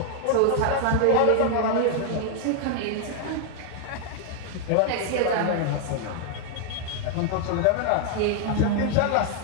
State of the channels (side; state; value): both; different; correlation 0.00